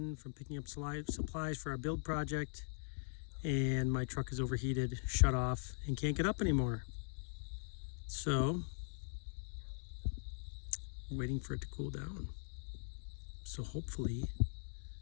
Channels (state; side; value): silent; right; digital silence